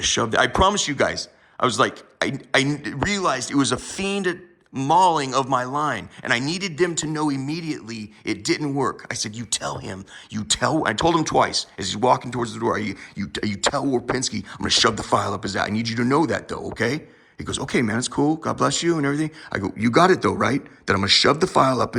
shove that. I promise you guys, I was like, I realized it was a fiend mauling of my line, and I needed them to know immediately it didn't work. I said, I told him twice as he's walking towards the door, you tell Warpinski I'm gonna shove the file up his ass. I need you to know that though, okay? He goes, okay, man, it's cool. God bless you and everything. I go, you got it though, right? That I'm gonna shove the file up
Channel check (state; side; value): identical; both; correlation 1.00